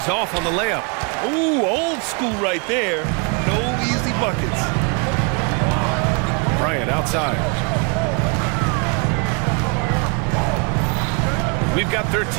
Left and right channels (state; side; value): quieter; left; 34.0 dB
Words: off on the layup. Ooh, old school right there. No easy buckets. Bryant outside. We've got